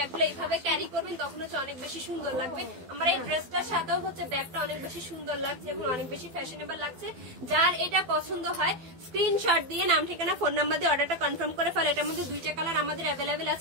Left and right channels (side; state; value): left; late; 12 ms